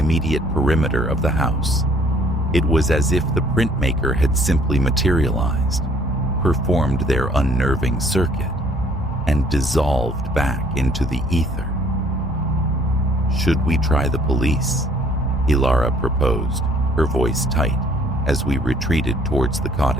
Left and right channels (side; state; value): both; normal; correlation 0.60